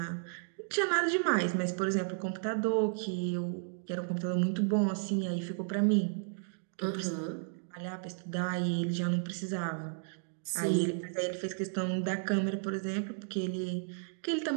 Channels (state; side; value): silent; left; digital silence